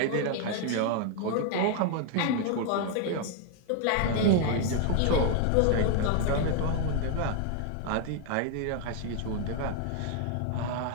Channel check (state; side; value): different; both; correlation 0.00